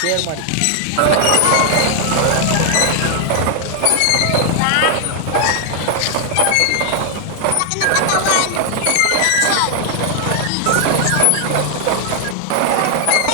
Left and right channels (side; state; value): both; different; correlation 0.00